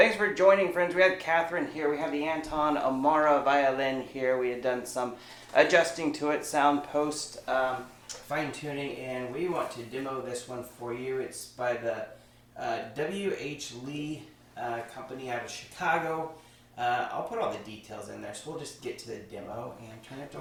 for joining, friends. We have Catherine here. We have the Anton Amara violin here. We had done some adjusting to it, sound post fine tuning, and we want to demo this one for you. It's by the WHLee company out of Chicago. I'll put all the details in there, so we'll just get to the demo and turn it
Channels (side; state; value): both; identical; correlation 1.00